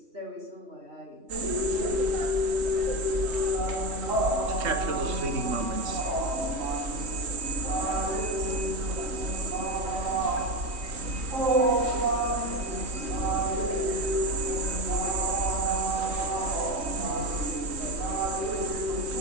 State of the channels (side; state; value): left; late; 3.1 ms